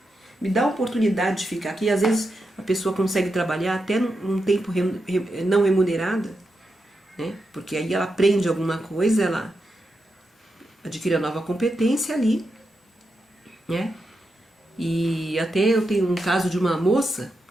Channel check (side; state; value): both; normal; correlation 0.87